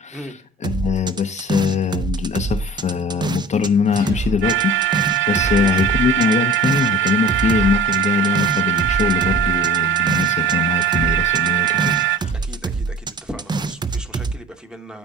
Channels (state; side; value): normal; both; correlation 0.42